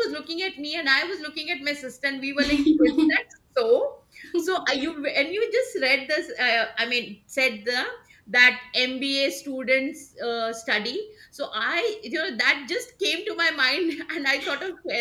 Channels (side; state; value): both; identical; correlation 1.00